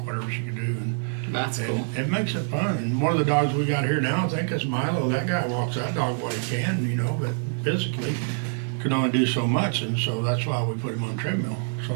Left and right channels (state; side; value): silent; left; 55 dB below the other